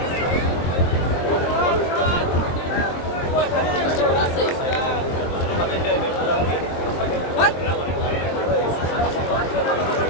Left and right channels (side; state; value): right; late; 23 ms